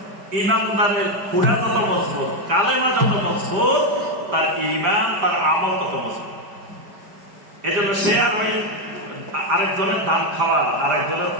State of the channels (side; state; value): left; late; 5.1 ms